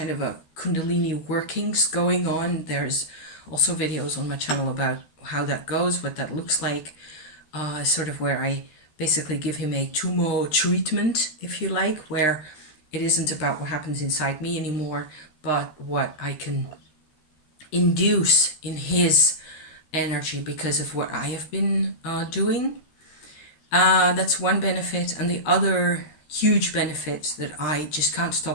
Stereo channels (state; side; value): late; right; 13 ms